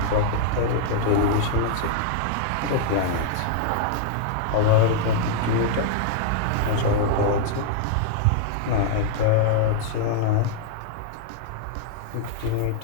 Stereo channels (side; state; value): both; different; correlation -0.01